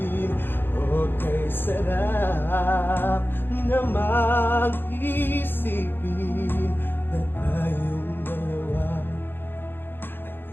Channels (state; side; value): late; right; 0.10 ms